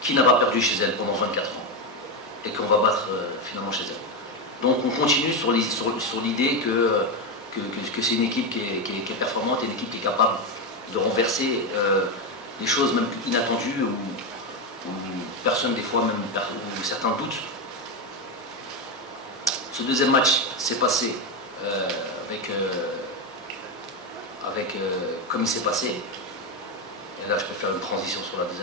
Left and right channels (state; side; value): normal; both; correlation 0.11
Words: n'a pas perdu chez elle pendant 24 ans et qu'on va battre finalement chez elle. Donc on continue sur l'idée que c'est une équipe qui est performante et une équipe qui est capable de renverser les choses même inattendues où personne des fois même où certains doutent. Ce deuxième match s'est passé comme il s'est passé. Et là je peux faire une transition sur la